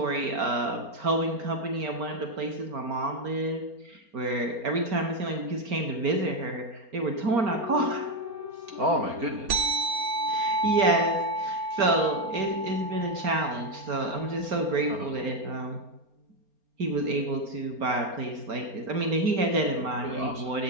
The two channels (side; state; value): left; late; 4.3 ms